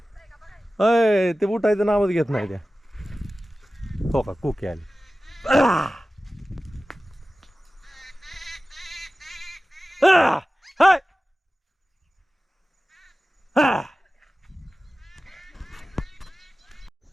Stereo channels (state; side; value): normal; both; correlation 0.96